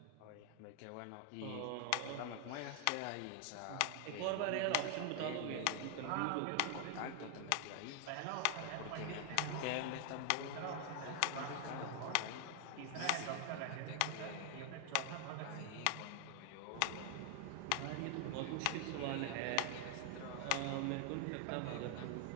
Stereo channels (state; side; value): different; both; correlation 0.00